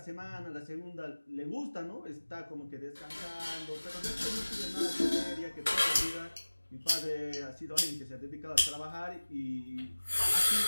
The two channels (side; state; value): both; inverted; correlation -1.00